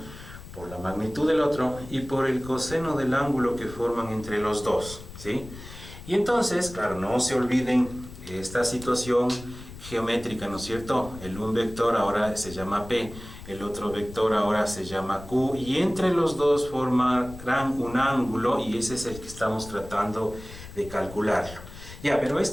por la magnitud del otro y por el coseno del ángulo que forman entre los dos, ¿sí? Y entonces, claro, no se olviden esta situación geométrica, ¿no es cierto? Un vector ahora se llama P, el otro vector ahora se llama Q, y entre los dos formarán un ángulo, y ese es el que estamos tratando de calcularlo. Ya, pero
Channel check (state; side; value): noise; left; rumble, 15 dB below the sound